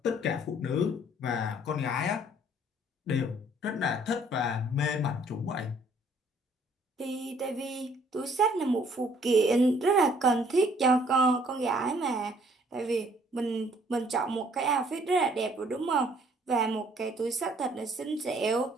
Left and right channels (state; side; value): normal; both; correlation 0.61